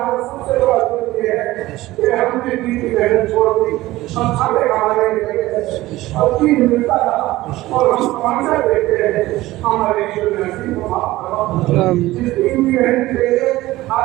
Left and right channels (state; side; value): quieter; left; 17.5 dB